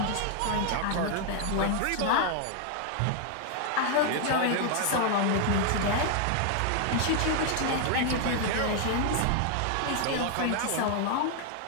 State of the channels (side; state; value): both; different; correlation 0.00